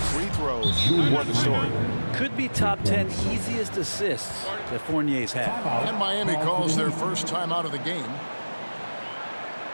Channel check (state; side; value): inverted; both; correlation -1.00